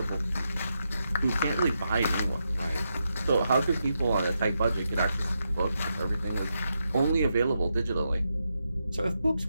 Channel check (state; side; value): inverted; both; correlation -0.85